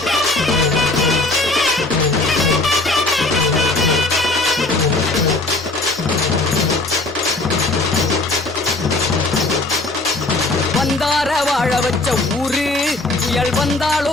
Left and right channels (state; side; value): quieter; right; 3.1 dB